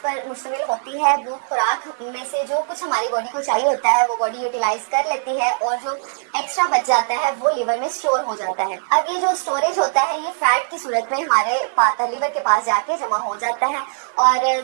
मुश्तमिल होती है, वो खुराक में से जो कुछ हमारी बॉडी को चाहिए होता है वो बॉडी यूटिलाइज कर लेती है और जो एक्स्ट्रा बच जाता है वो लिवर में स्टोर हो जाता है। अब ये जो स्टोरेज होता है ये फैट की सूरत में हमारे लिवर के पास जाके जमा हो जाता है और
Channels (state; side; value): silent; left; 65 dB below the other